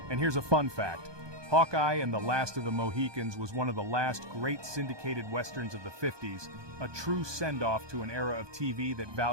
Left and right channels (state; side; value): late; left; 1.2 ms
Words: And here's a fun fact. Hawkeye and the Last of the Mohicans was one of the last great syndicated westerns of the 50s, a true send-off to an era of TV that